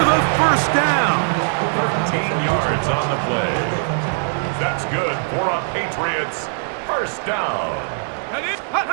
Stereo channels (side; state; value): left; silent; digital silence